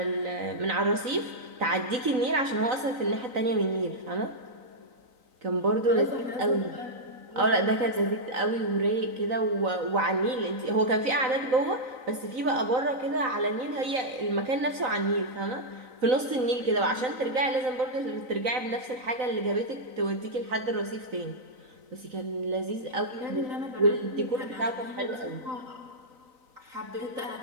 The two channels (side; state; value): left; late; 3.9 ms